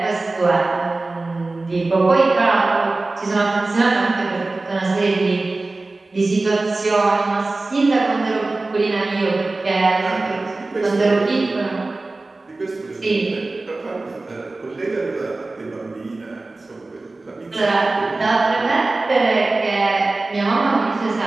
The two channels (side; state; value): left; quieter; 3.2 dB